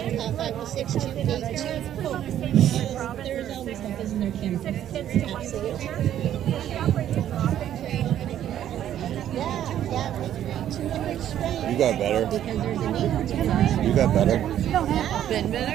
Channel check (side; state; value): left; quieter; 11.1 dB